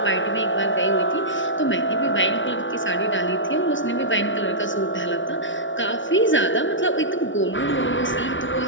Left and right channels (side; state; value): right; late; 0.56 ms